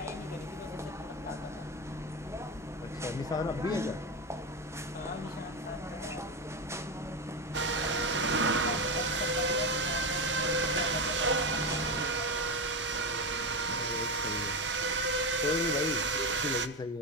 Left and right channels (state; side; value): normal; both; correlation 0.16